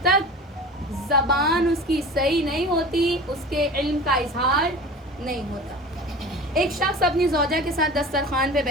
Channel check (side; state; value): both; normal; correlation 0.36